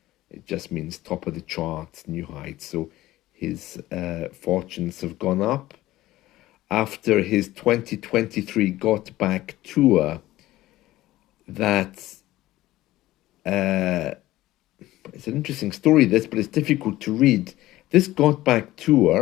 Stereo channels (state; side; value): quieter; right; 16.3 dB